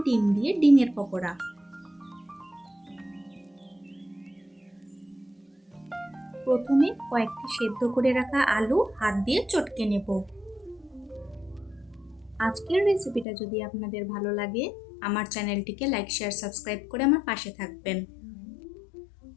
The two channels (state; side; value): drops out; right; at 13.2 s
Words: ডিম দিয়ে ডিমের পকোড়া। প্রথমে কয়েকটি সেদ্ধ করে রাখা আলু হাত দিয়ে চটকে নেব। আজকের রেসিপিটা যদি আপনাদের ভালো লাগে, আমার চ্যানেলটিকে লাইক, শেয়ার, সাবস্ক্রাইব করে আমার পাশে থাকবেন।